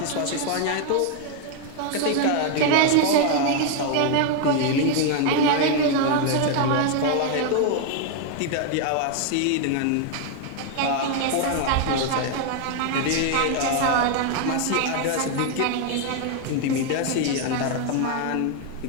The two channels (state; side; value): different; both; correlation 0.01